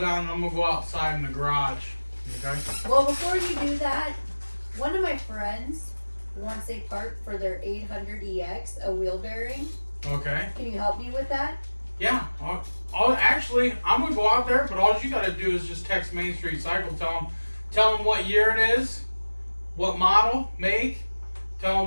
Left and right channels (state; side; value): inverted; both; correlation -1.00